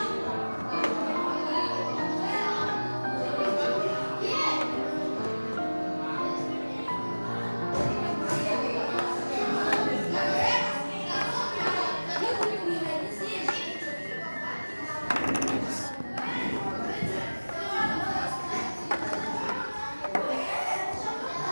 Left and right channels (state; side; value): inverted; both; correlation -1.00